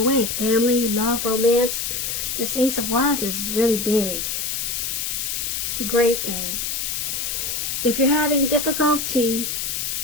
way. Family, love, romance. This Ace of Wands is really big. It's a great thing. If you're having difficulty,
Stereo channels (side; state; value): left; noise; hiss, 2 dB below the sound